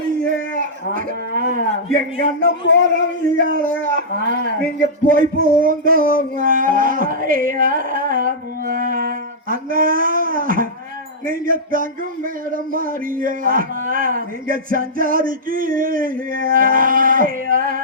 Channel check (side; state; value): both; normal; correlation -0.13